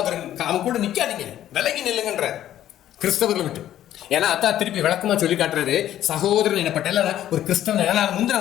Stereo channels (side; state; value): right; quieter; 12.1 dB